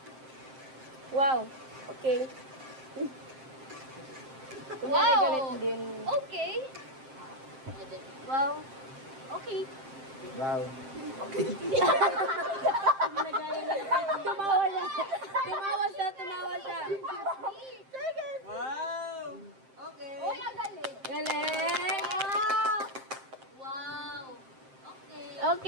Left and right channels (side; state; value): left; late; 7.6 ms